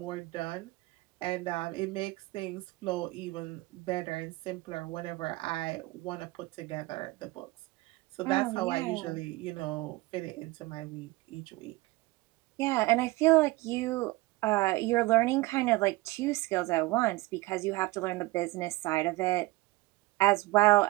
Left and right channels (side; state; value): left; quieter; 21.1 dB